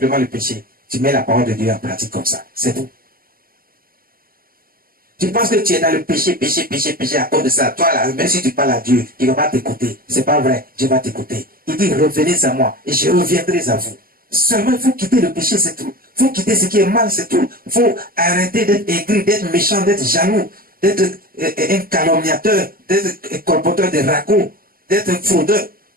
le péché. Tu mets la parole de Dieu en pratique comme ça. C'est tout. Tu penses que tu es dans le péché à cause de ça. Toi, là, même si tu parles à Dieu, il ne va pas t'écouter. C'est pas vrai. Dieu va t'écouter. Il dit, revenez à moi et je reviendrai à vous. Seulement, il faut quitter le péché, c'est tout. Il faut quitter ce qui est mal, c'est tout. Il faut arrêter d'être aigri, d'être méchant, d'être jaloux, d'être un calomniateur, d'être un colporteur de ragots, d'être un fraudeur.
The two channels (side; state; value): left; late; 0.42 ms